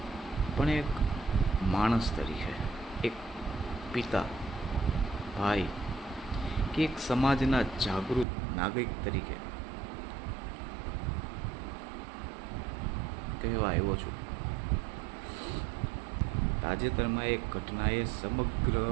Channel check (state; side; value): drops out; left; at 8.2 s